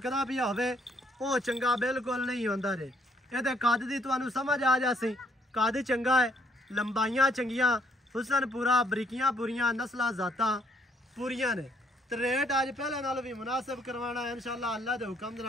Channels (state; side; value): normal; both; correlation 0.68